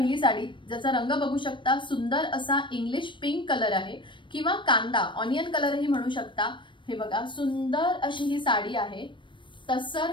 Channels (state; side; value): late; right; 0.24 ms